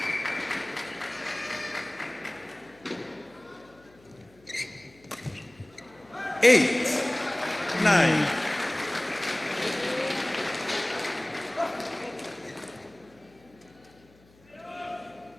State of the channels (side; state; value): left; noise; hum, 28 dB below the sound